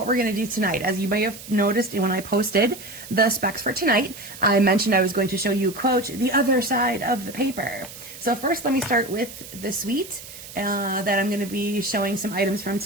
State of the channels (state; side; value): noise; right; hiss, 15 dB below the sound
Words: we're going to do tonight. As you may have noticed when I posted the specs for tonight, I mentioned I was going to show you, quote, the other side of the paper. So first, let me start with the suite that I'm going to be showing some items from